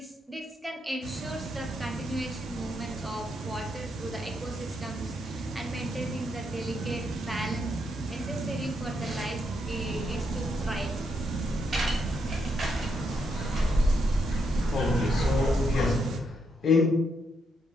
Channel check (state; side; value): normal; both; correlation 0.79